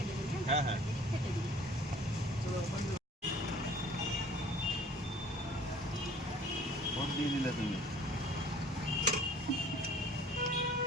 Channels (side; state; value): both; normal; correlation 0.52